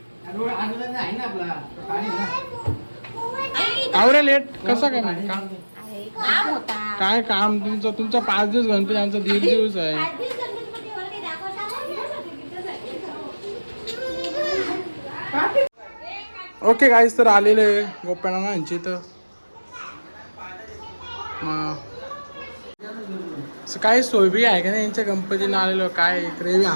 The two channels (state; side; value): inverted; both; correlation -1.00